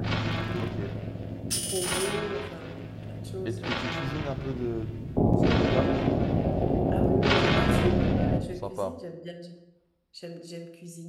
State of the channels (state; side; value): identical; both; correlation 1.00